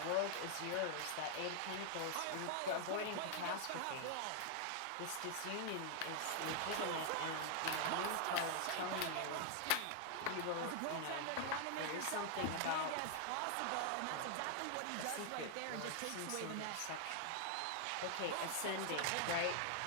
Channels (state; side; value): different; both; correlation 0.00